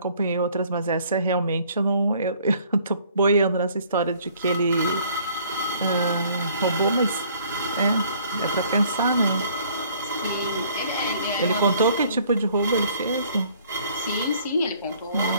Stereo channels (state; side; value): inverted; both; correlation -0.58